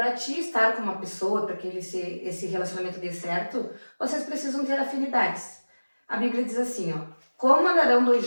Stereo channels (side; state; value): both; inverted; correlation -1.00